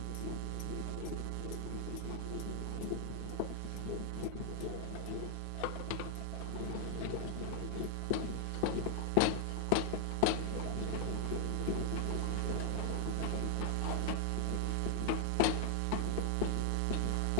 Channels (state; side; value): different; both; correlation 0.00